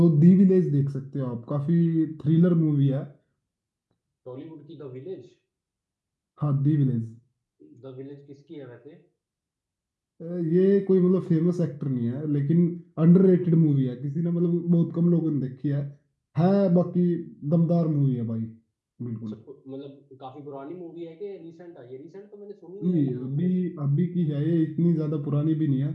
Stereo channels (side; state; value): both; identical; correlation 1.00